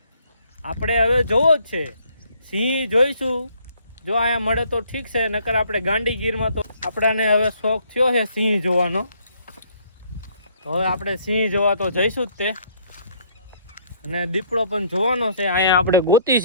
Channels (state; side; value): inverted; both; correlation -0.64